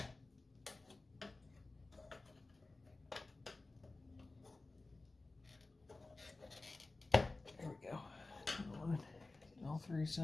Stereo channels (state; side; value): quieter; right; 3.3 dB